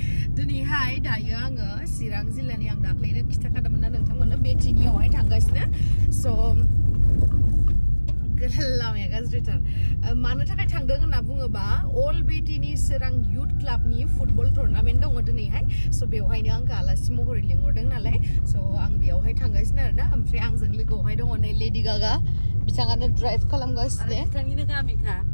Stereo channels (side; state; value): both; inverted; correlation -1.00